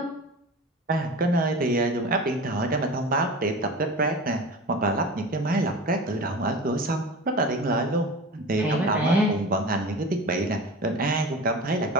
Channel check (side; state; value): both; normal; correlation 0.33